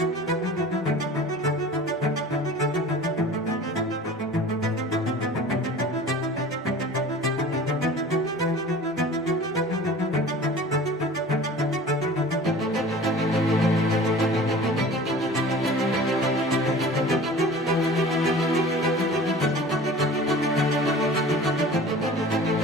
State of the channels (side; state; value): both; normal; correlation 0.41